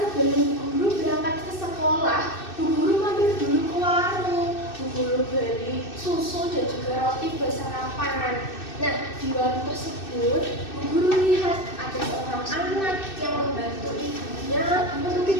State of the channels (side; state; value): right; late; 2.6 ms